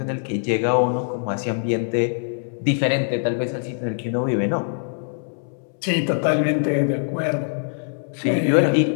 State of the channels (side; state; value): right; silent; 64 dB below the other